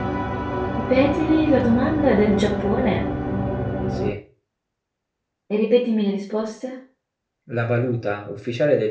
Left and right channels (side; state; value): both; identical; correlation 1.00